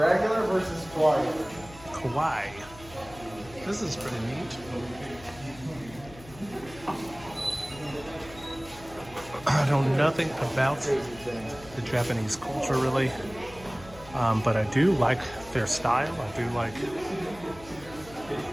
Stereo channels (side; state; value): left; noise; hum, 19 dB below the sound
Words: versus kawaii. Kawaii. This is pretty neat. I know nothing about the Japanese culture really, but I do like their style. I do like